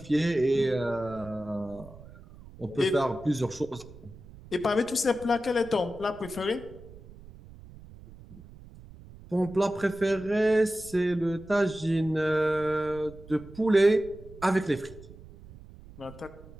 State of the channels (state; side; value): noise; right; rumble, 19 dB below the sound